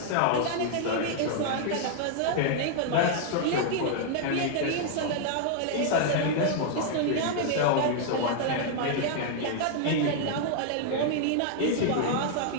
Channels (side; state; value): both; different; correlation -0.01